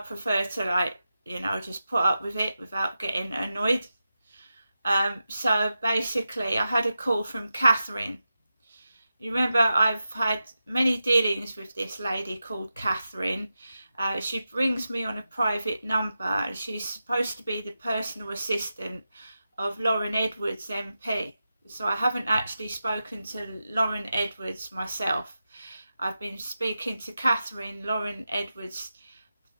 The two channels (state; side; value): inverted; both; correlation -0.91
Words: to just put up with it without getting annoyed. So basically I had a call from Catherine. You remember I've had many dealings with this lady called Catherine. She brings me on a private number. She's supposed to be the personal assistant of Lauren Edwards MP. So I haven't actually spoken to Lauren Edwards myself. I've been speaking to Catherine, Lauren Edwards'